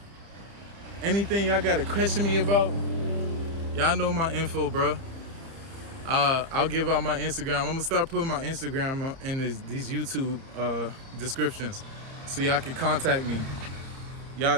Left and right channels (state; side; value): late; left; 30 ms